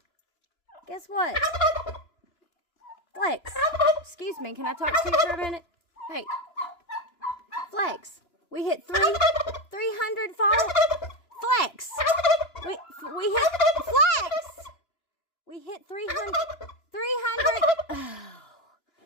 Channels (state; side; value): late; right; 3.0 ms